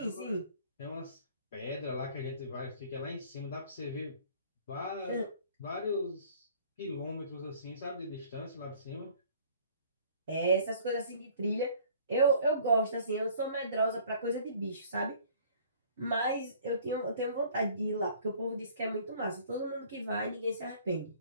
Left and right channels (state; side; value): inverted; both; correlation -0.53